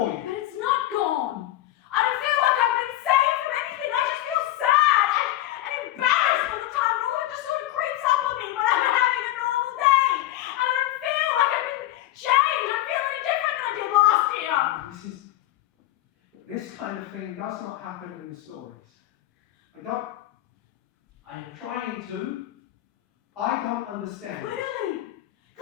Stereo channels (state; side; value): quieter; right; 14.7 dB